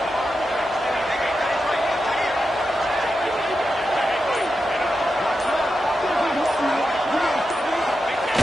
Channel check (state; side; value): normal; both; correlation 0.89